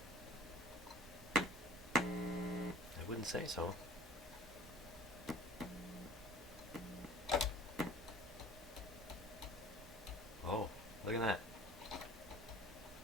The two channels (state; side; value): normal; both; correlation 0.47